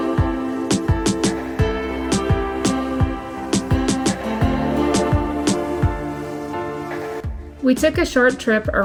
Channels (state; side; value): identical; both; correlation 1.00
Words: We took a short trip